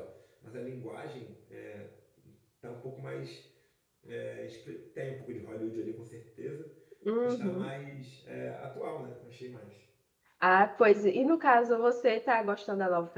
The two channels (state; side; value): identical; both; correlation 1.00